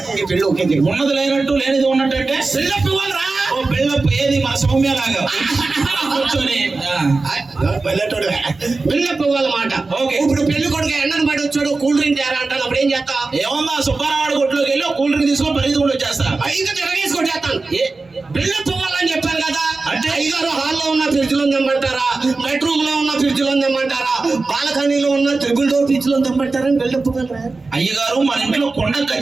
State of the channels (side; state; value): left; quieter; 3.7 dB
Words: పెళ్లి ఓకే ఉన్నది లేనట్టు లేనిది ఉన్నట్టు అంటే పెళ్ళప్పు ఇవ్వాలరా. ఓ పెళ్ళప్పు ఏది మన సౌమ్య లాగా కూర్చొని పెళ్ళప్పు ఇవ్వాలన్నమాట. ఓకే ఇప్పుడు పెళ్లి కొడుకు ఎండను పడి వచ్చాడు కూల్ డ్రింక్ తేరా అంటాను. అప్పుడు ఏం చేస్తా? ఏమన్నా సుబ్బారావాడి కొట్లోకి వెళ్ళి కూల్ డ్రింక్ తీసుకొని పరిగెత్తుకుంటూ వచ్చేస్తా. ఇంకా తిరగేసుకొని చేస్తాను. పెళ్ళప్పు ఇవ్వాలని చెప్పాను కదా. అంటే ఐదారు హాల్లో ఉన్న ఫ్రిడ్జ్ లో తెమ్మంటారా, బెడ్రూమ్ లో ఉన్న ఫ్రిడ్జ్ లో తెమ్మంటారా, బాల్కనీలో ఉన్న ట్రిపుల్ డోర్ ఫ్రిడ్జ్ లో తెమ్మంటారా? పెళ్ళప్పు అయ్యగారు మన ఇంట్లో కొండ